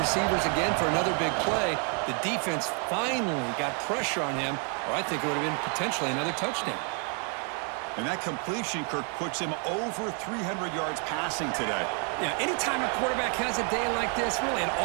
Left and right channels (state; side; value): quieter; left; 39.3 dB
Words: again for another big play. The defense finally got pressure on him, or I think it would have been potentially another touchdown. And that completion, Kirk, puts him over 300 yards passing today. Yeah, anytime a quarterback has a day like this, really it